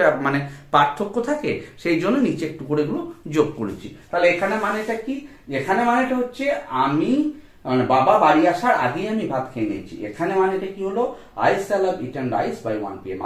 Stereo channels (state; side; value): identical; both; correlation 1.00